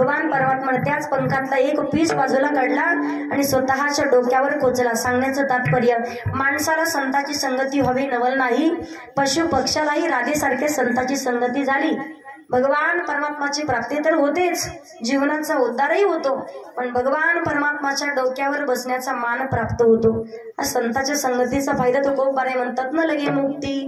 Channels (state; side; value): identical; both; correlation 1.00